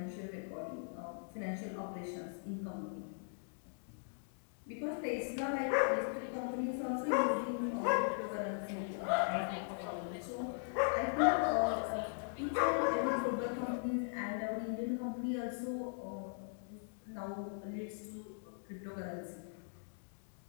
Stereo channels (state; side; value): silent; right; digital silence